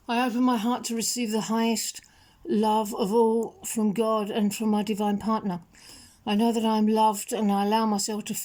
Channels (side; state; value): both; identical; correlation 1.00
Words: I open my heart to receive the highest love of all from God and from my divine partner. I know that I'm loved, and I allow myself to